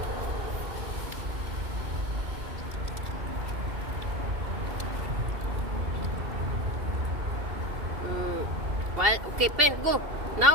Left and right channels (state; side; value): late; left; 2.8 ms